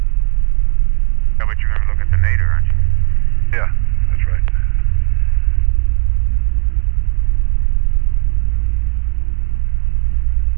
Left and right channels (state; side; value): quieter; left; 35.8 dB